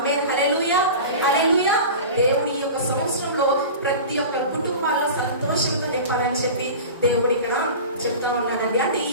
హల్లెలూయా, హల్లెలూయా. దేవుడి యొక్క సంవత్సరంలో ప్రతి ఒక్క కుటుంబాల్లో సంతోషంతో నింపాలని చెప్పి దేవుడు ఇక్కడ చెప్తా ఉన్నాడండి. అంటే ఈ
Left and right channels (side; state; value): both; inverted; correlation -0.33